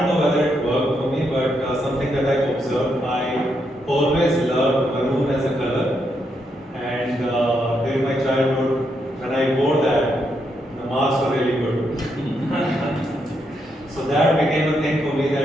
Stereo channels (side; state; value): both; normal; correlation 0.79